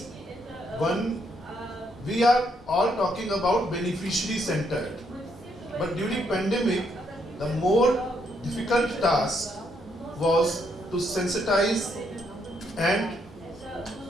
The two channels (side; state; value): both; normal; correlation 0.74